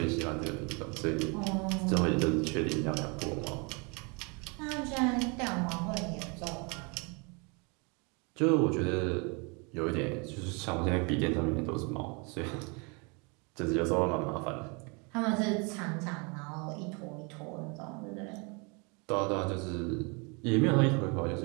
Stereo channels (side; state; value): left; quieter; 31.6 dB